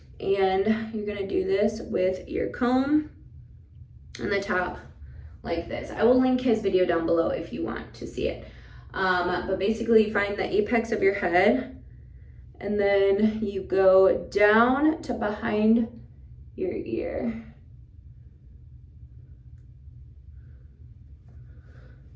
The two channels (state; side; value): identical; both; correlation 1.00